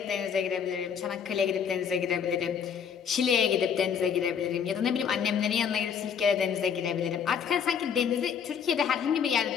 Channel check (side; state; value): right; quieter; 7.3 dB